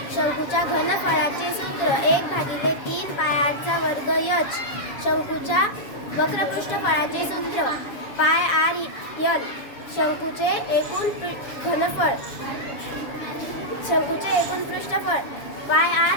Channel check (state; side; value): late; right; 7.2 ms